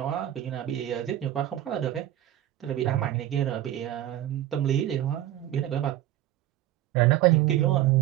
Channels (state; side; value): quieter; left; 13.0 dB